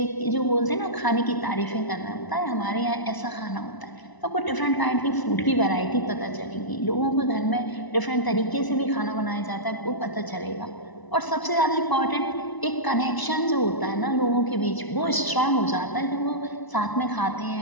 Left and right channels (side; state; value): right; late; 1.0 ms